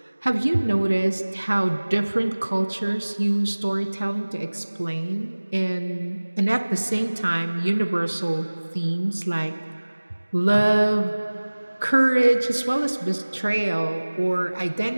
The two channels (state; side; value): inverted; both; correlation -1.00